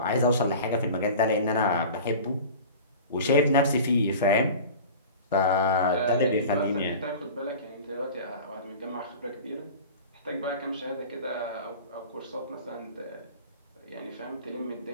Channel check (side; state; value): both; inverted; correlation -0.37